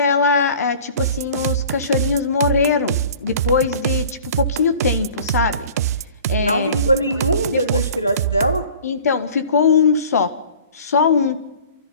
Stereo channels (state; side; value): inverted; both; correlation -0.46